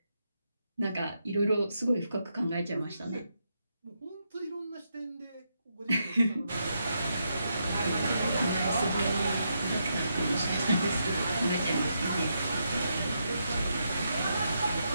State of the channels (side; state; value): both; inverted; correlation -0.81